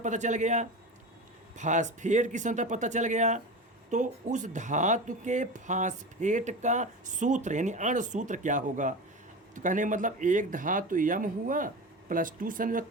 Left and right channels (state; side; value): normal; both; correlation 0.28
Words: चल गया, फास्फेट की संख्या पता चल गया, तो उस धातु के फास्फेट का सूत्र यानी अणुसूत्र क्या होगा? तो कहने मतलब एक धातु यम हुआ +2